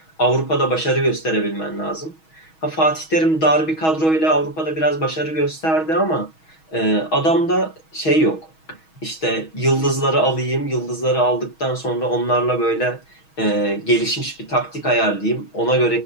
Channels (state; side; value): late; right; 6.3 ms